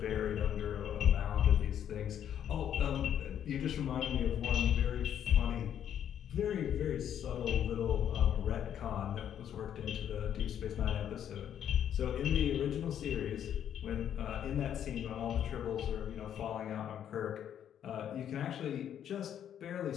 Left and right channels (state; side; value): quieter; right; 9.7 dB